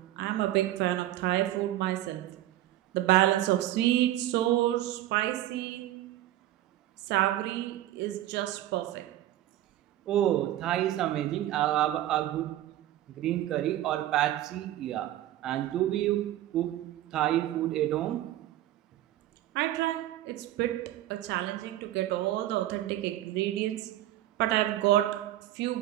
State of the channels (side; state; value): left; quieter; 13.9 dB